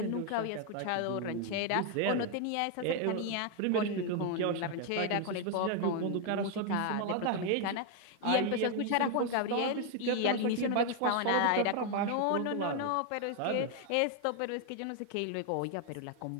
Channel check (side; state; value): both; different; correlation 0.00